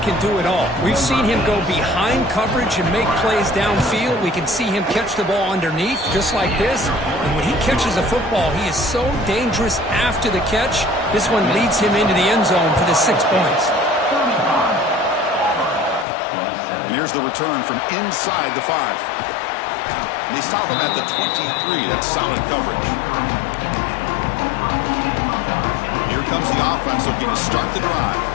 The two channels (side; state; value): right; drops out; at 16.1 s